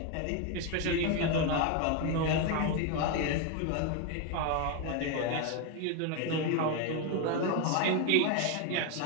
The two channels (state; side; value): different; both; correlation 0.02